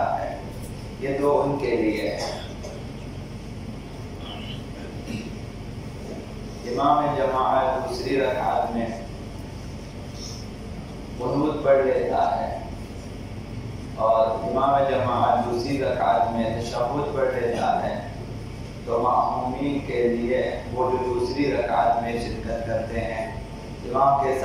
ہے، یہ دو ان کے لیے ہے۔ امام جماعت دوسری رکعت میں قنوت پڑھ لیتا ہے اور امام جماعت دوسری رکعت میں تشہد پڑھ لیتا ہے، تو مأمومین کے لیے وہ جو دوسری رکعت میں شرکت کرتے ہیں امام کے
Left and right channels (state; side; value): identical; both; correlation 1.00